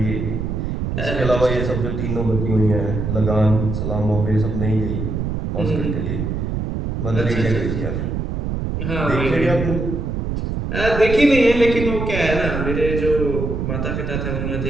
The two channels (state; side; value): noise; right; rumble, 2 dB below the sound